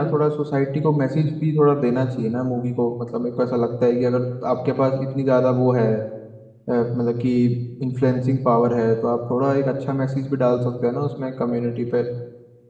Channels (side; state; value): both; identical; correlation 1.00